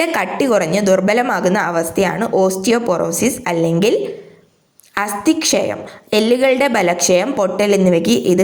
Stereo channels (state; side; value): identical; both; correlation 1.00